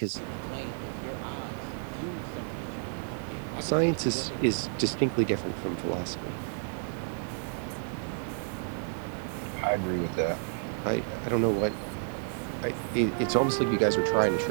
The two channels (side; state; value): left; silent; 57 dB below the other